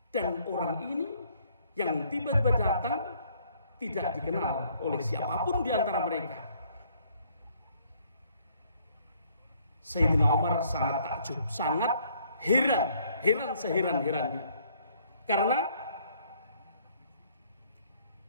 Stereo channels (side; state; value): both; inverted; correlation -0.65